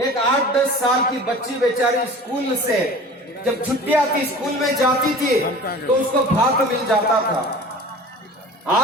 8-10 साल की बच्ची बेचारी स्कूल से जब छुट्टियां थी स्कूल में जाती थी तो उसको भात मिल जाता था।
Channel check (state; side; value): normal; both; correlation 0.40